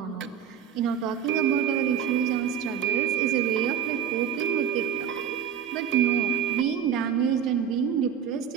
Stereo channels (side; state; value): left; quieter; 8.2 dB